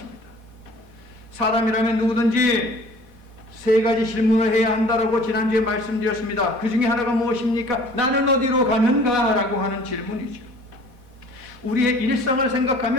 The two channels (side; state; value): left; late; 4.1 ms